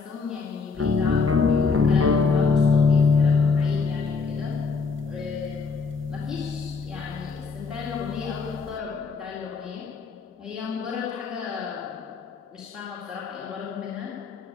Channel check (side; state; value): right; quieter; 4.8 dB